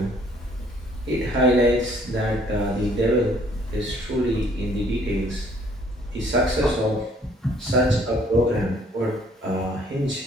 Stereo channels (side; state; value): both; normal; correlation 0.61